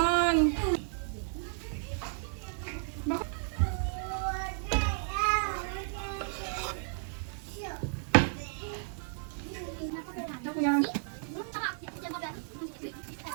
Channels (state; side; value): silent; left; 55 dB below the other